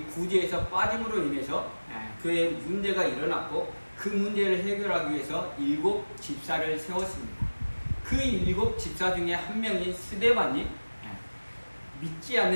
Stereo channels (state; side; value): inverted; both; correlation -1.00